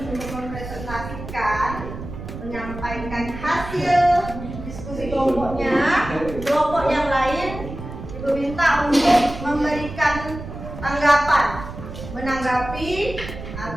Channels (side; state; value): right; noise; rumble, 10 dB below the sound